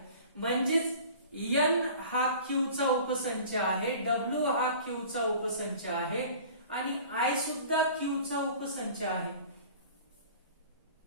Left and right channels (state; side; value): inverted; both; correlation -0.44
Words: म्हणजेच एन हा क्यूचा उपसंच आहे, डब्ल्यू हा क्यूचा उपसंच आहे आणि आय सुद्धा क्यूचा उपसंच आहे.